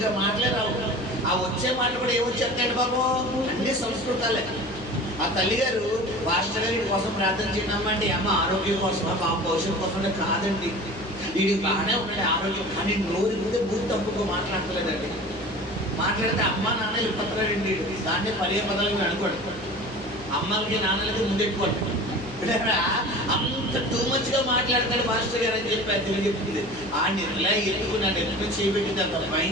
మాట్లాడరావు. ఆ వచ్చే మాటలు కూడా ఏమొచ్చేస్తాడు బాబు? అన్ని సంస్కృతాలే. ఆ తల్లిగారు పాస్టర్ గారి కోసం ప్రార్థన చేయడమ్మా అంటే అమ్మ ఆరోగ్యం కోసమా, బాబు భవిష్యత్తు కోసం కాదండి, వీడికి బాగానే ఉన్నాడు ఆరోగ్యం, కానీ నోరు ఇస్తే బూత్ తప్పుకో మాట్లాడలేదండి. మాట్లాడితే అమ్మ నాన్న ఇప్పట్లాడండి. దాన్ని పదే పదాలు అనుకోండి. అమ్మలకి నాన్నలకి ముందెట్టుకోండి. అంత టూ మచ్ గా మాట్లాడతాడు మాస్టర్ గారు అని చెప్పి అది తెలియజెప్పింది. ఆ నిర్లా ఎత్తుకు నన్ను ఎత్తుకు చేయబెట్టింది. అంత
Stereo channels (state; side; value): noise; right; hum, 17 dB below the sound